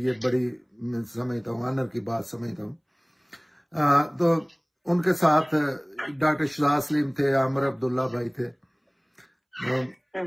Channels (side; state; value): both; identical; correlation 1.00